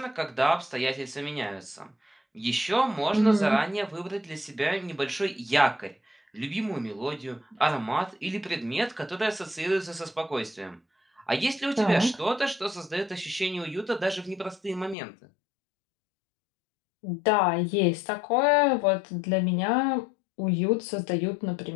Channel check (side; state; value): right; drops out; at 15.0 s